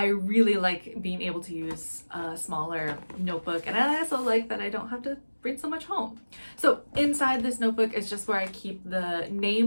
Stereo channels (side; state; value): both; inverted; correlation -1.00